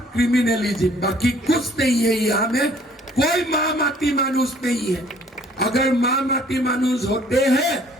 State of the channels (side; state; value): both; normal; correlation 0.58